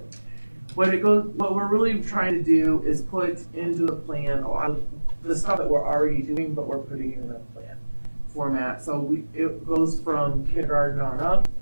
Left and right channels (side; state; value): both; inverted; correlation -1.00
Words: What we're really trying to do is put into the plan a lot of the stuff that we're already doing, but we're putting in the plan format. So it goes from kindergarten on up.